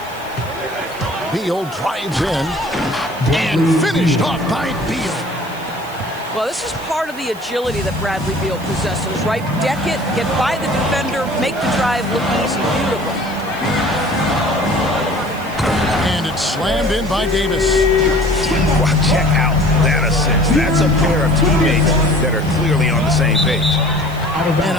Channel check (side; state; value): right; noise; hiss, 21 dB below the sound